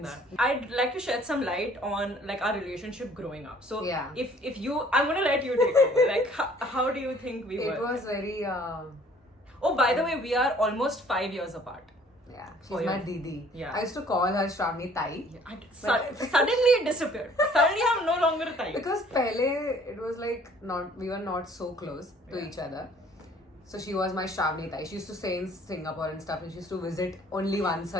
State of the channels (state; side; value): normal; both; correlation 0.56